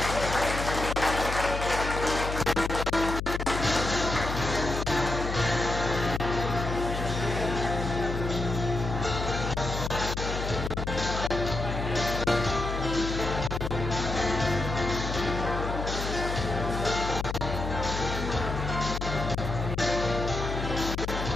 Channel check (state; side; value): noise; left; hum, 4 dB below the sound